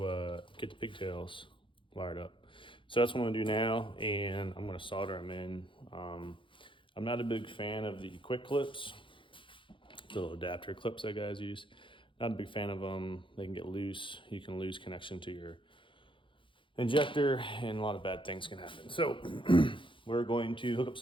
get the pigtails wired up. So that's what I'm going to do now, and I'm going to solder them in. I'm not a big fan of the quick clips, the little adapter clips that guys use. Not a big fan of them. They can get loose. You can lose connection to your injector, and a lot of bad things can happen. So we're going to hook up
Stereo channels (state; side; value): late; right; 0.25 ms